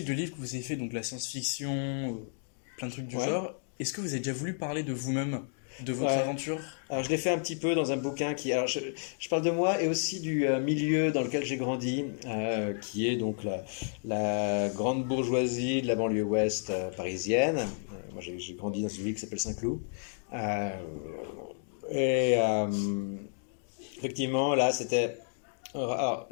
de livres que vous avez fait, donc la science-fiction, plein de trucs du genre, est-ce que vous avez déjà voulu parler de vous-même, de votre aventure? Alors je l'ai fait un petit peu dans un bouquin alors je parle de moi et aussi du milieu dans lequel j'ai grandi, qui est donc la grande bourgeoisie de la banlieue ouest parisienne. Moi j'ai grandi dans une ville qui s'appelle Saint-Cloud. Effectivement là c'était... Alors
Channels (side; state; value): right; silent; digital silence